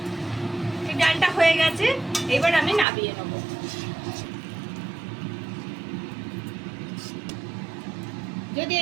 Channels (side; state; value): left; drops out; at 2.9 s